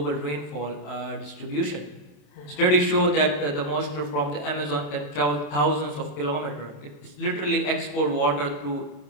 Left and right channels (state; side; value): late; right; 27 ms